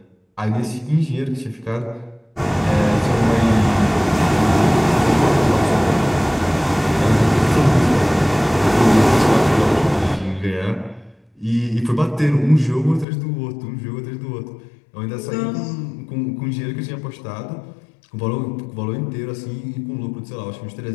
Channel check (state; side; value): drops out; right; at 13.1 s